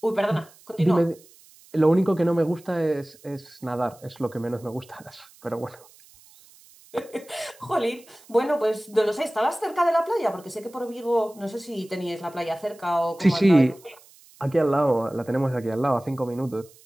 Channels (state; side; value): noise; right; hiss, 26 dB below the sound